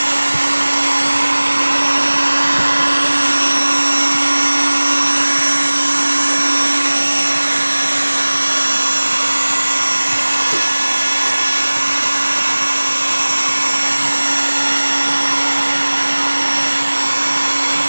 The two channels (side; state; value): both; inverted; correlation -1.00